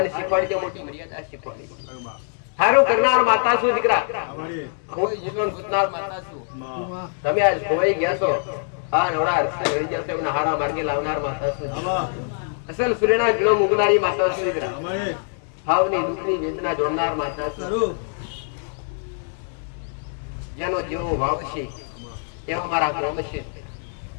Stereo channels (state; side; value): silent; right; 63 dB below the other